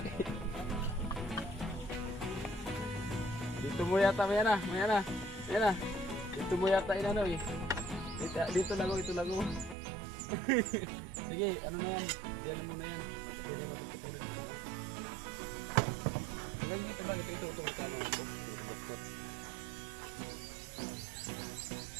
Dito mo yata, maya na. Dito mo yata inano eh. Dito lago. Sige, ano na yan? Diyan mo na yan. Ilan dito ba? Ito.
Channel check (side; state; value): left; drops out; at 9.8 s